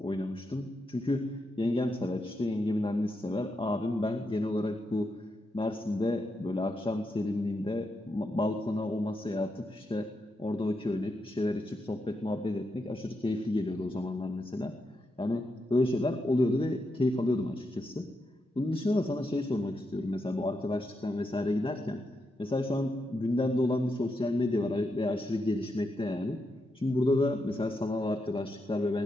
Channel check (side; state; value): both; normal; correlation 0.84